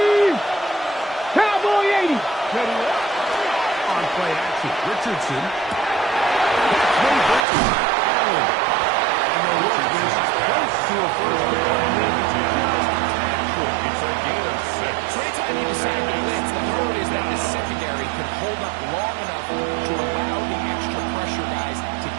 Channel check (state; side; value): drops out; left; at 7.4 s